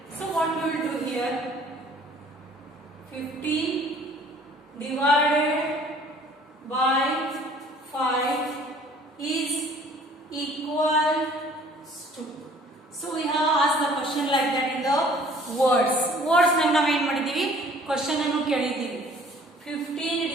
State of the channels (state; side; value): normal; both; correlation 0.54